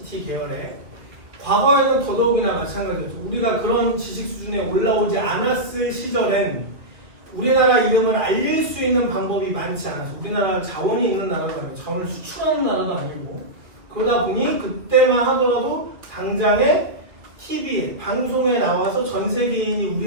계열에 과거에는 더더욱이나 마찬가지였죠. 우리가 그런 지식 수준에 올라오지 않았을 시절엔 우리나라 이름을 알릴 수 있는 방법이 많지 않아서, 우리나라가 자원이 있는 나라도 아니고 자원을 수출하는 나라도 아니고, 그러다 보니 그때만 하더라도 당장에 TV에, 방송에 나와서 전 세계인이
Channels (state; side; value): late; left; 2.1 ms